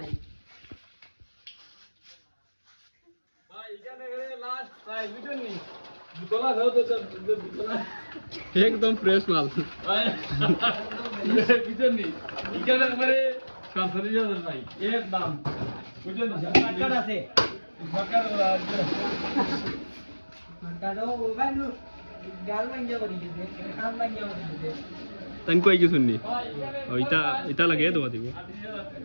ভাই ইকান এখানে লাস্ট ভাই বুঝুনি তোলা দাও তো তোলা একদম ফ্রেশ মাল। ভাই বুঝুনি ইকান একবারে 47,000 ভাই এর দাম বুঝুনি কাট আছে সরকার কাটো ভাই নো গাল ভাঙ্গা বলি দে কাম ভাঙ্গা বলি দে তাই কই কিছু নি? ও ইটা লাগে দেওয়া দিব।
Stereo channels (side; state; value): both; inverted; correlation -1.00